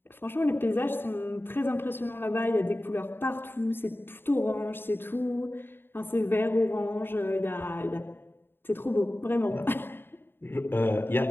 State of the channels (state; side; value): late; right; 0.10 ms